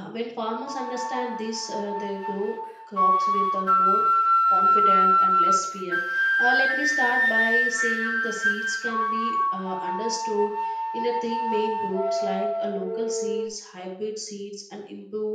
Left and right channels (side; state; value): both; identical; correlation 1.00